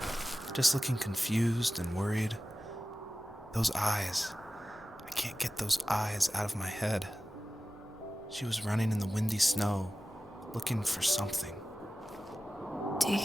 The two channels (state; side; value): normal; both; correlation 0.95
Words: just looking confused and worried. Those eyes. I can't get those eyes out of my head. She was running in the windy snow, looking for something. Do